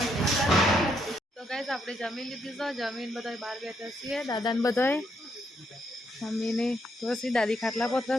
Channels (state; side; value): normal; both; correlation 0.76